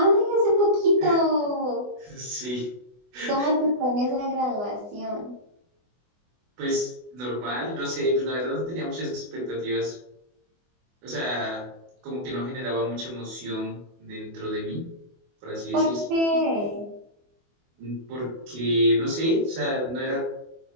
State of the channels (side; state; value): left; late; 24 ms